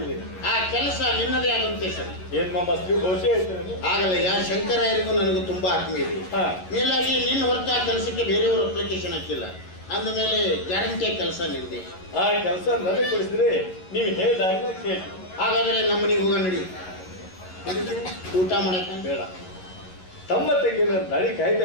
ಆ ಕೆಲಸ ನಿನ್ನದೇ ಆಗುತ್ತೆ ಸರ್. ಏನ್ ಮಾಸ್ತ್ರಿ ಬಹುಶಃ ಹೇಳ್ತೇನೆ. ಆಗಲಯ್ಯ, ಶಂಕರಾಯರಿಗೂ ನನಗೂ ತುಂಬಾ ಆತ್ಮೀಯ ಇದೆ. ಮೇಲಾಗಿ ನಿನ್ನ ಹೊರತು ಆ ಕೆಲಸಕ್ಕೆ ಬೇರೆಯವರು ಅಪ್ಲಿಕೇಶನ್ ಹಾಕಿಲ್ಲ ಅಂದ ಮೇಲೆ ಗ್ಯಾರಂಟಿ ಕೆಲಸ ನಿಂದೆ. ಆ ಕೆಲಸ ನನಗೆ ಕೊಡಿಸಿದ್ರೆ ನೀವು ಹೇಳಿದಾಗ ಕೇಳಿ. ಹಾಗಾದ್ರೆ ನಮ್ಮ ಮನೆಗೆ ಹೋಗ ನಡಿ. ಊಟ ಮಾಡಕ ಬೇಡ, ತಮ್ಮ ತಂಗಿನ ದಾಡಿ ಕಾಯ್ತಾ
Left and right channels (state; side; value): late; right; 11 ms